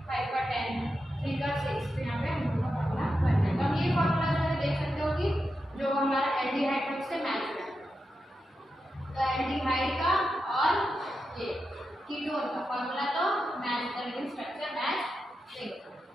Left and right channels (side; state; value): both; normal; correlation 0.88